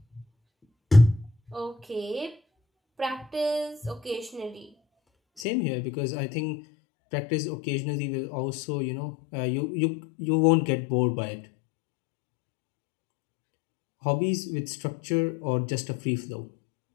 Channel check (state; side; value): drops out; right; at 5.5 s